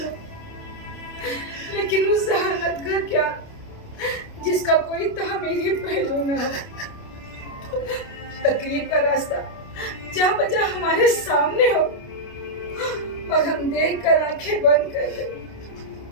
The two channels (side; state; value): right; late; 29 ms